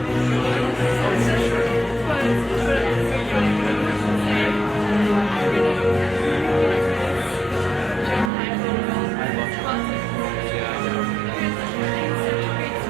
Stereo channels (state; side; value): drops out; left; at 8.3 s